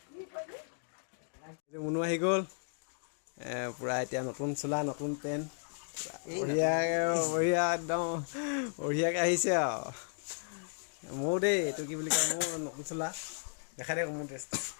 এইটো মুনু আহি গ'ল পূৰা এতিয়া নতুন চোলা নতুন পেণ্ট বঢ়িয়া একদম বঢ়িয়াকৈ আহিছে আৰু মোৰ দেই এইটো কি বুলি কয় মোৰ নতুন চোলা দেখাই দে মোৰ ড্ৰেছটো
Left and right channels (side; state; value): right; silent; digital silence